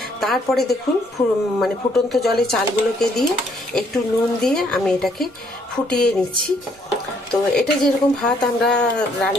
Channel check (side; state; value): both; normal; correlation 0.67